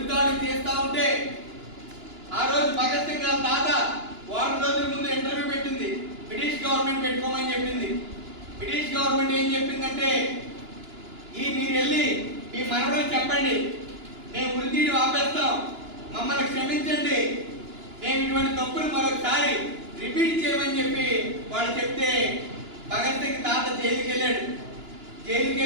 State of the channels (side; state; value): left; late; 2.9 ms